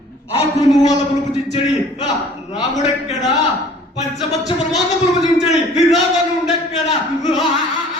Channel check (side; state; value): both; normal; correlation 0.51